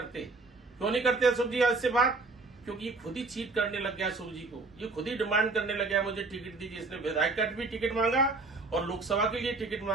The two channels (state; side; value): quieter; left; 3.6 dB